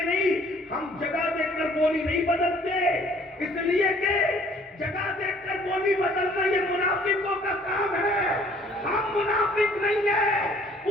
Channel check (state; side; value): normal; both; correlation 0.57